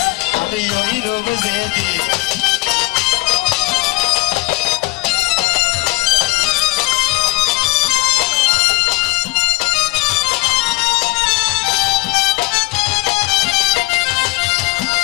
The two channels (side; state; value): right; quieter; 23.0 dB